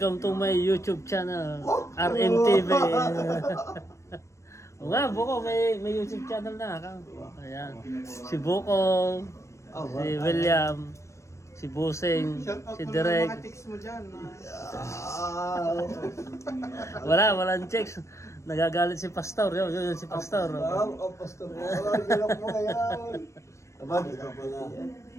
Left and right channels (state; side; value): late; right; 0.14 ms